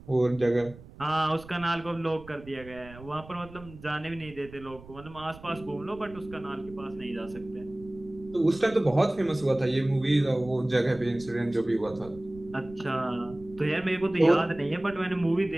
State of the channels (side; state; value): right; noise; rumble, 18 dB below the sound